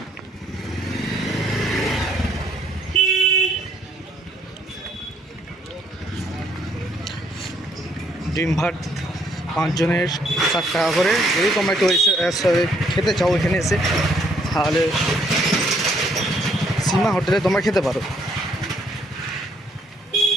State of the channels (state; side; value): normal; both; correlation 0.68